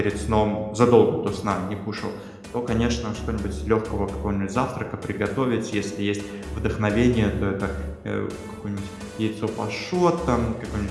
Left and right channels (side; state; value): both; identical; correlation 1.00